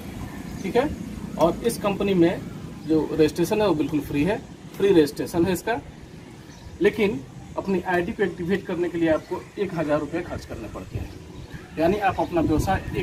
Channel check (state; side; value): identical; both; correlation 1.00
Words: ठीक है। और इस कंपनी में जो रजिस्ट्रेशन है वो बिल्कुल फ्री है, फ्री रजिस्ट्रेशन है इसका। लेकिन अपनी आईडी को एक्टिवेट करने के लिए आपको 1000 रुपये खर्च करने पड़ते हैं, यानी आप अपना व्यवसाय